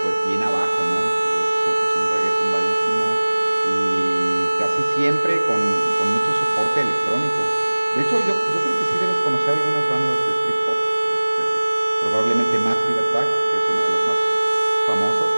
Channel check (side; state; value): both; inverted; correlation -1.00